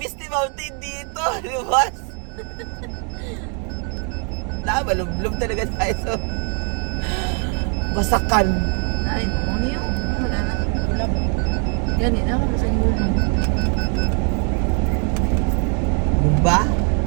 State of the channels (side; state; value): left; quieter; 38.8 dB